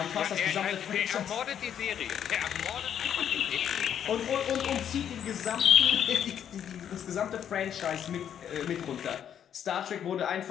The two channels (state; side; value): quieter; right; 9.2 dB